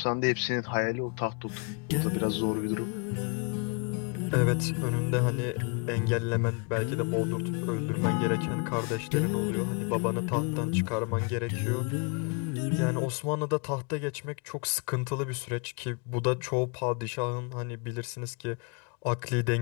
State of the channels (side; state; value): right; quieter; 34.1 dB